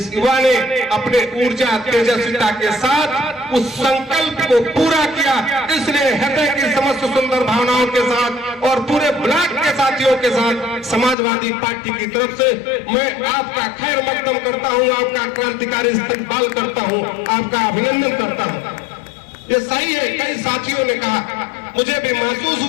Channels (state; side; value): drops out; right; at 11.2 s